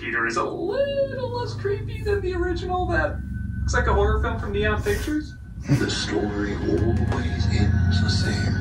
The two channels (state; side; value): identical; both; correlation 1.00